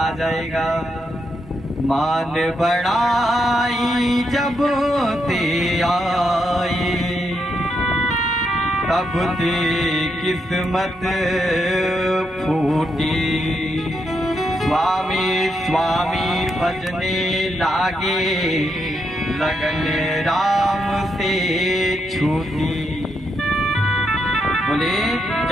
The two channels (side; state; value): both; normal; correlation 0.81